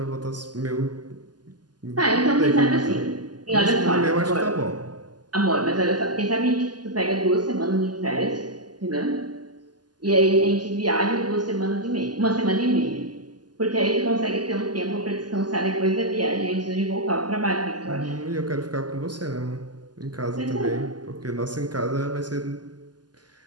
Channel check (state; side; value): late; left; 0.70 ms